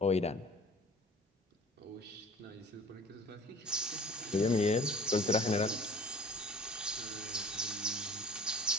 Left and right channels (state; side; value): normal; both; correlation 0.46